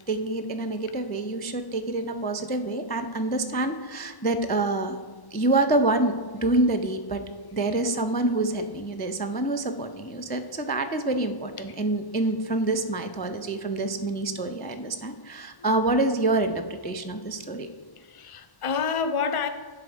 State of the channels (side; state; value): right; late; 1.0 ms